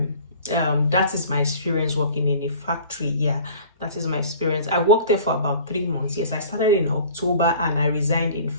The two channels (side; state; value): both; inverted; correlation -0.45